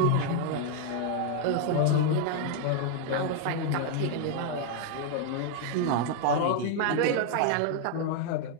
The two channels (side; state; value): both; different; correlation 0.00